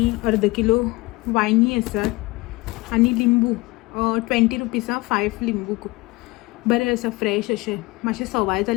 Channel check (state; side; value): quieter; right; 23.0 dB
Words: अर्द किलो वांयगी आसात. आनी लिंबू 20 रुपीजां 5 लिंबू. बरें आसा, फ्रेश अशें. मातशें सवाय